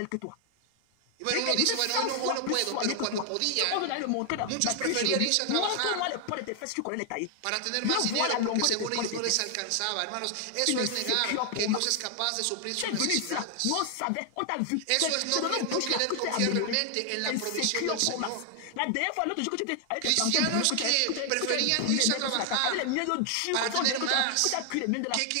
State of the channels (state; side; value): different; both; correlation 0.00